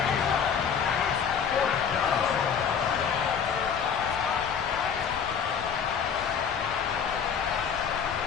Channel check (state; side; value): quieter; right; 7.0 dB